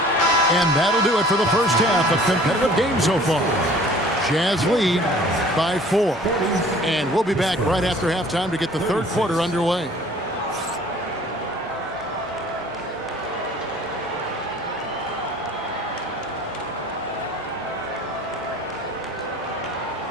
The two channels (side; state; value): both; normal; correlation 0.50